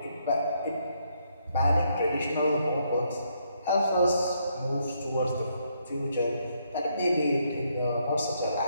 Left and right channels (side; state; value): both; inverted; correlation -0.74